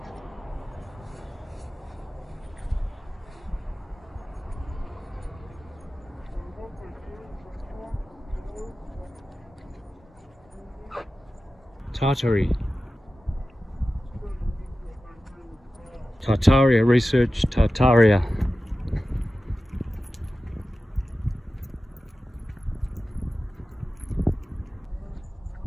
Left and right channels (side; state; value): both; normal; correlation 0.94